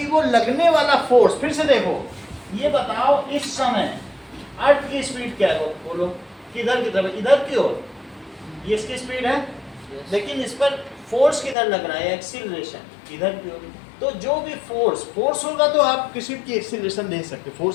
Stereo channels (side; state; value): right; drops out; at 11.6 s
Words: वो लगने वाला फोर्स, फिर से देखो, ये बताओ इस समय अर्थ की स्पीड क्या है, बोलो किधर की तरफ, इधर की ओर, ये इसकी स्पीड है, लेकिन इस पर फोर्स किधर लग रहा है, एक्सीलरेशन इधर की ओर। तो जो भी फोर्स होगा तो आप किसी की एक्सीलरेशन दे सकते,